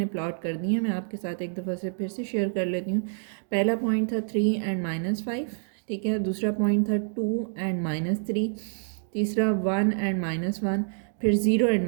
प्लॉट कर दिए हैं। मैं आपके साथ एक दफ़ा से फिर से शेयर कर लेती हूँ। पहला पॉइंट था 3 और -5, ठीक है। दूसरा पॉइंट था 2 और -3। तीसरा 1 और -1। फिर 0 और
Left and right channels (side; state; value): left; silent; digital silence